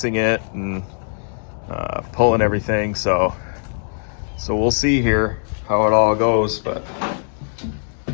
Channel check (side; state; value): right; silent; 65 dB below the other